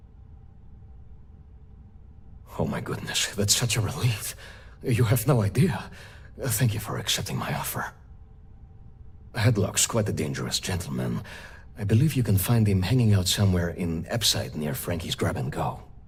Oh my goodness, that's such a relief. You have no idea. Thank you for accepting my offer. Headlock's quite a dangerous gentleman. I believe you can find him hanging out somewhere in Epside near Frankie's Grab and Go.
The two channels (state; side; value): identical; both; correlation 1.00